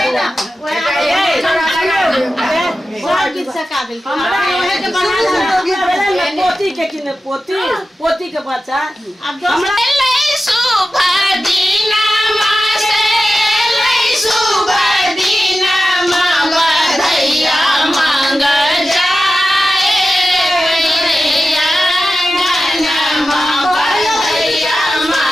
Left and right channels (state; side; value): normal; both; correlation 0.93